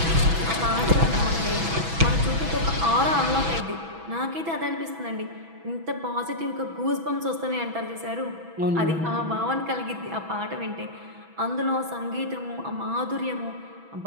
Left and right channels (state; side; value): late; left; 6.1 ms